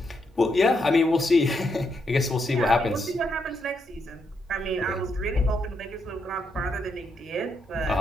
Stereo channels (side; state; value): both; normal; correlation 0.79